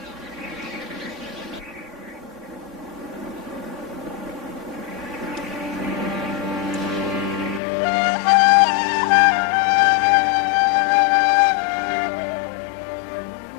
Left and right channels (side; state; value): right; drops out; at 7.6 s